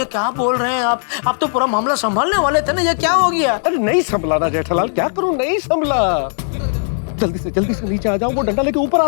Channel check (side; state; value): right; silent; digital silence